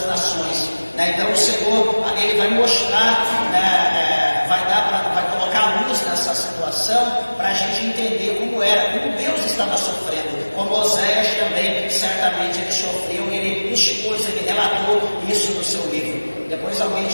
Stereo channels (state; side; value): inverted; both; correlation -1.00